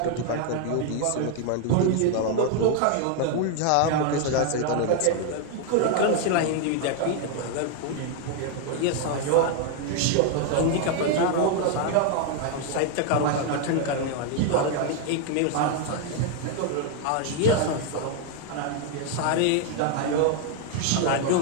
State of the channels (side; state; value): both; different; correlation 0.00